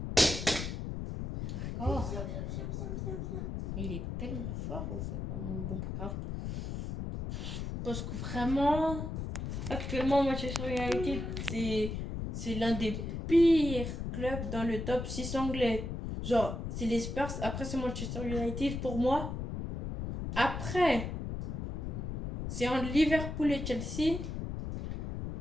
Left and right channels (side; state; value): left; noise; rumble, 4 dB below the sound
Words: D'accord. Il est tellement fort ou c'est pas mon bon grave. Parce que vraiment, actuellement, Manchester United, c'est l'un des pires clubs dans le top 6 anglais. Genre, c'est les Spurs, après c'est Manchester United pour moi. Après, c'est entre Liverpool et Chelsea.